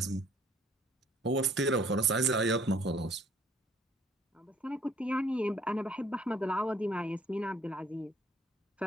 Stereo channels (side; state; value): both; normal; correlation 0.60